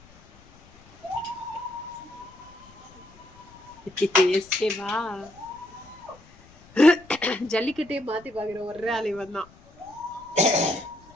எஸ்கேவா? ஜல்லிக்கட்டே மாத்தி பாக்குற ஒரே ஆள் இவன் தான்.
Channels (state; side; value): noise; left; rumble, 25 dB below the sound